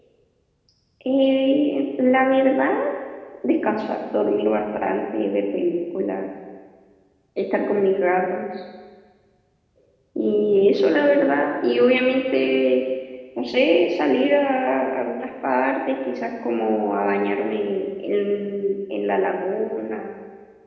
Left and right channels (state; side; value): identical; both; correlation 1.00